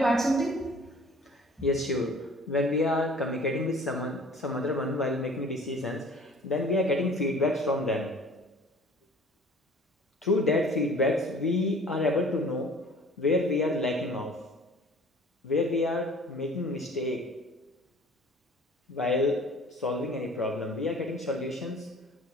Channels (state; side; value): normal; both; correlation 0.49